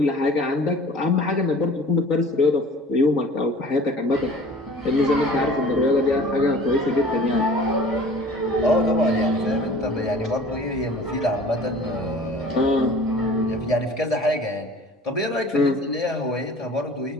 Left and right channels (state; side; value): normal; both; correlation 0.46